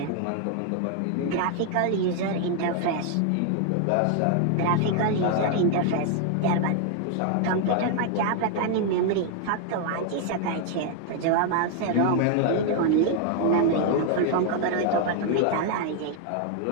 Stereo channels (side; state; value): both; different; correlation 0.00